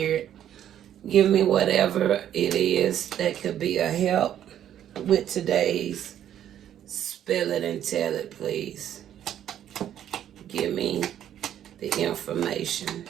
Give me whatever it is that could be a help with today's Spill It and Tell It, please. Give me the information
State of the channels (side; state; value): left; quieter; 10.6 dB